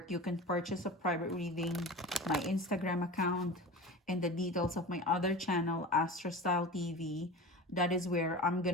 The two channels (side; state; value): both; normal; correlation 0.32